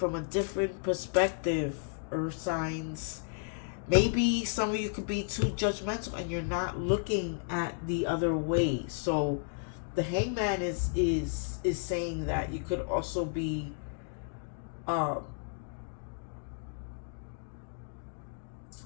a different perspective, Earth signs. Maybe some of you could be too judgmental and you're not looking at the other way. So the Hangman is saying that you could also be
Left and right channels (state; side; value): silent; right; digital silence